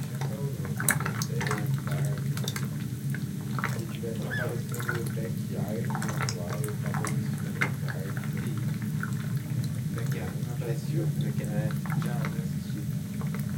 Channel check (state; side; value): identical; both; correlation 1.00